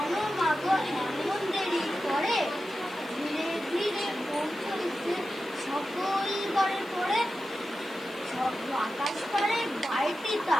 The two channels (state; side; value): noise; left; hiss, 24 dB below the sound